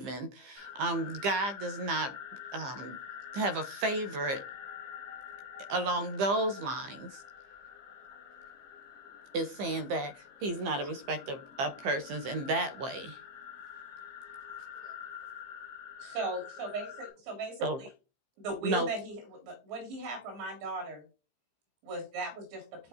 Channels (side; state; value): left; late; 15 ms